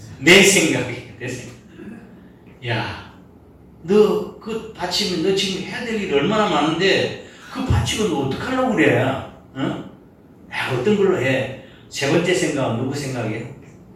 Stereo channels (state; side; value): identical; both; correlation 1.00